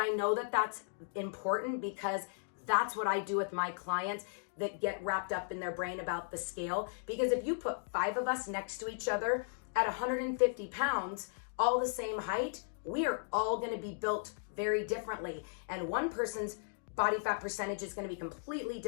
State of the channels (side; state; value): right; silent; digital silence